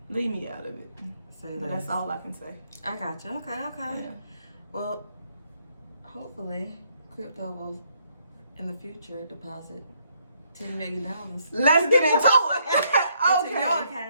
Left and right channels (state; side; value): inverted; both; correlation -0.71